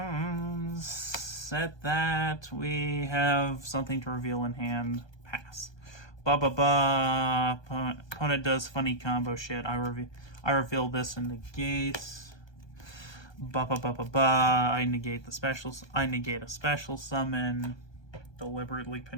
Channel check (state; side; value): late; right; 1.2 ms